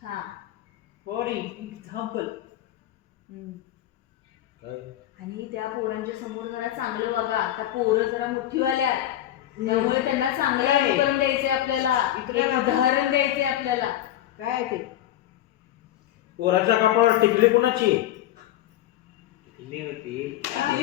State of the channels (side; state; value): right; quieter; 13.0 dB